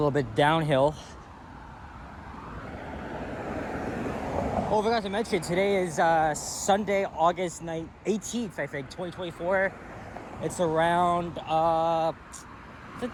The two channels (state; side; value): identical; both; correlation 1.00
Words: bit downhill. Oh, I forgot to mention, today is Sunday, August 18th, I think, 2024. It's around, I think